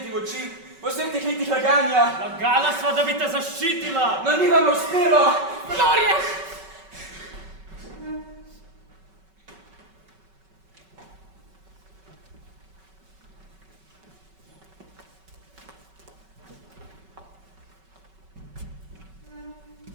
v oči, po vseh teh letih laganja. Lagala sva, da bi te zaščitila. No, ni vam uspelo! Florian!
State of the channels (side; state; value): left; late; 5.3 ms